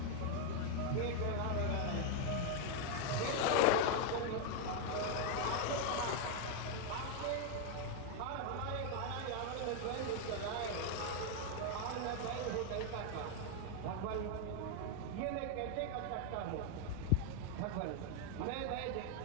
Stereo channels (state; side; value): different; both; correlation 0.00